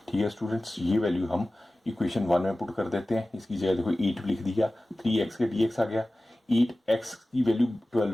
ठीक है स्टूडेंट्स, ये वैल्यू हम इक्वेशन 1 में पुट कर देते हैं, इसकी जगह देखो 8 लिख दिया, 3x के dx आ गया, 8x की वैल्यू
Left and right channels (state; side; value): normal; both; correlation 0.96